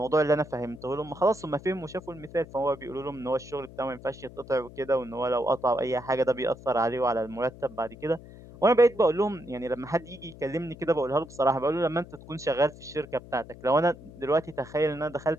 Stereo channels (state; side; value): noise; left; hum, 18 dB below the sound